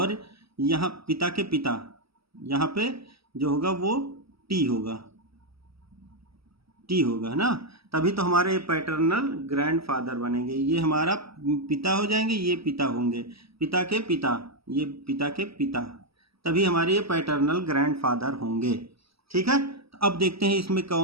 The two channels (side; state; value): left; late; 0.76 ms